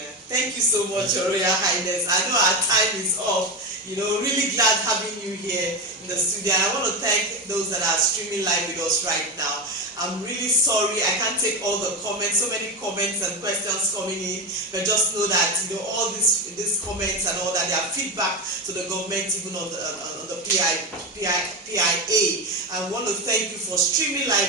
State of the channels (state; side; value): normal; both; correlation 0.17